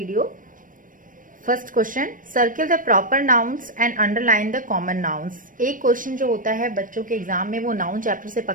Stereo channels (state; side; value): late; left; 0.39 ms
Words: First question, circle the proper nouns and underline the common nouns. एक क्वेश्चन जो होता है बच्चों के एग्जाम में वो नाउन चैप्टर से